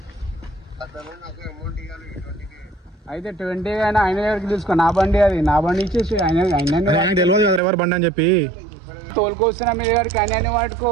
అయితే 20 అయినా ఆయన దగ్గరికి తీసుకో. నా బండి అది, నా బండి ఇచ్చేసి ఆయన తెలియదు కదా ఎవరు బండి అని చెప్పి తోలుకొస్తున్నా మీ దగ్గరికి. ఆయన వాడుకో,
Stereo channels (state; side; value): drops out; left; at 7.6 s